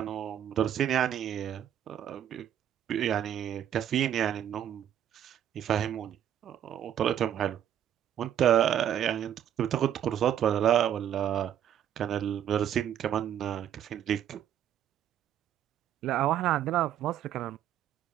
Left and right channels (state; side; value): quieter; left; 10.2 dB